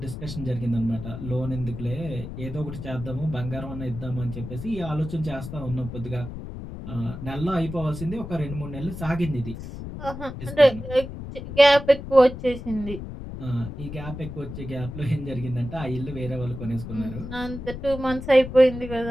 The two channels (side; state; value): left; noise; rumble, 9 dB below the sound